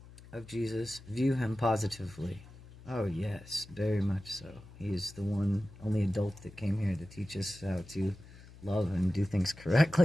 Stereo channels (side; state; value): left; noise; hum, 19 dB below the sound